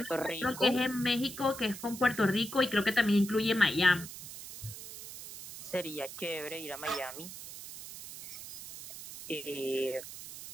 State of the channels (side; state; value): right; noise; hiss, 12 dB below the sound